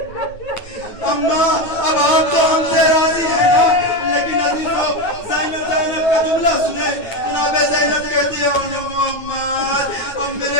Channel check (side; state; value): right; late; 9.6 ms